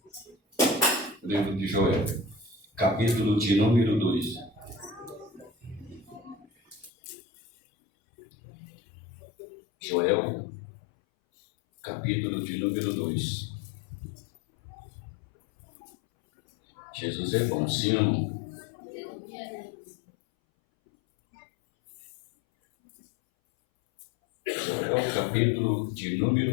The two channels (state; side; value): drops out; right; at 6.9 s